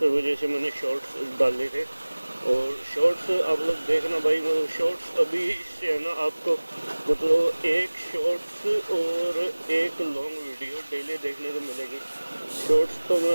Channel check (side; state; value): both; inverted; correlation -1.00